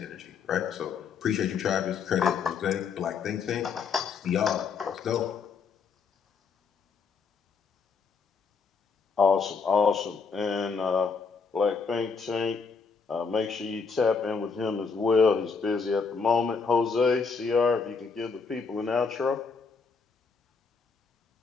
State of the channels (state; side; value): quieter; right; 5.3 dB